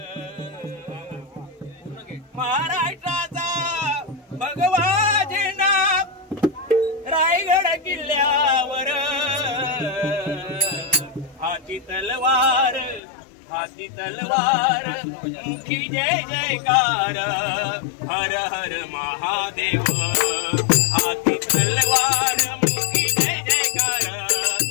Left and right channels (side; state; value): right; drops out; at 13.0 s